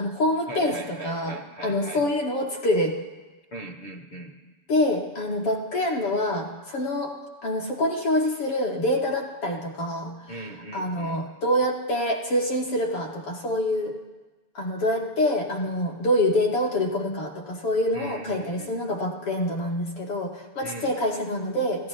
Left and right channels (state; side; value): late; right; 7.0 ms